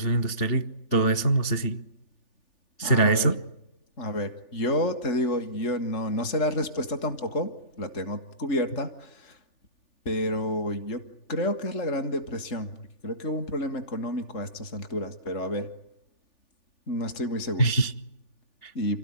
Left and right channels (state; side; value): late; right; 3.4 ms